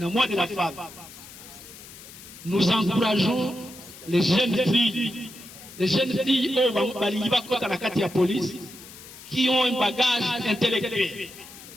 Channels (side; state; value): left; noise; hiss, 17 dB below the sound